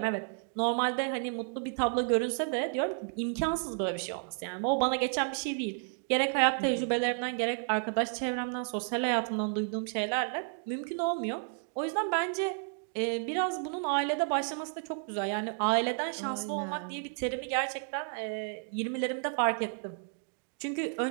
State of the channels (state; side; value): silent; left; 56 dB below the other